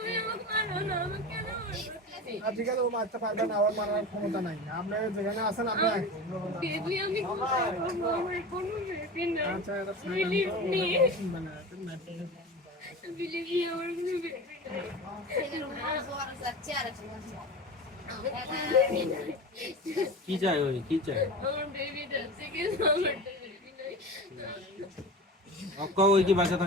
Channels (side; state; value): both; normal; correlation 0.30